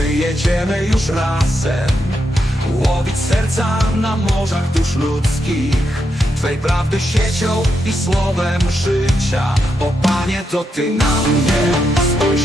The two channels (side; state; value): both; normal; correlation 0.83